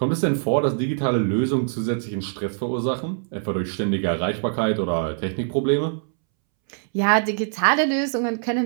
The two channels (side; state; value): left; silent; 63 dB below the other